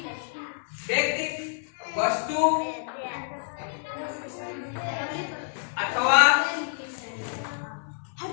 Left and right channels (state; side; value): silent; right; digital silence